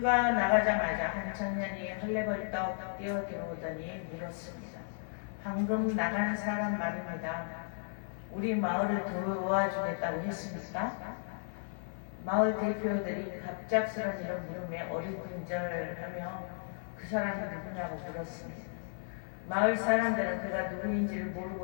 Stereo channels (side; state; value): right; silent; 55 dB below the other